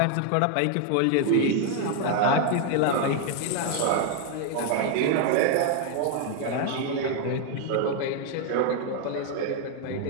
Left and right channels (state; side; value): different; both; correlation 0.00